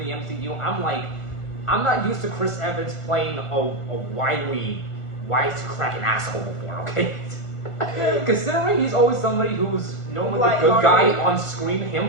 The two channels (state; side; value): late; right; 1.5 ms